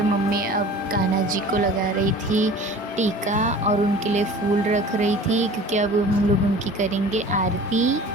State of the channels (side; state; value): both; normal; correlation 0.42